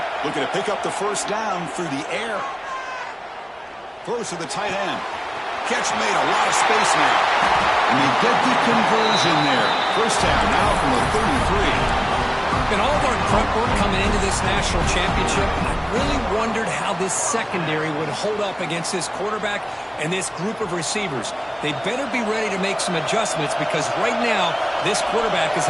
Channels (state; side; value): identical; both; correlation 1.00